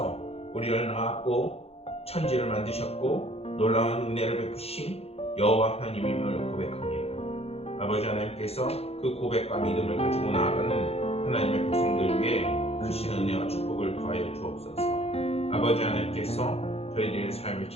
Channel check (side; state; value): right; late; 0.29 ms